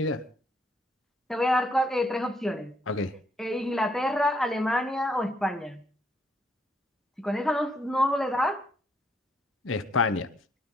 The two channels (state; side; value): normal; both; correlation 0.71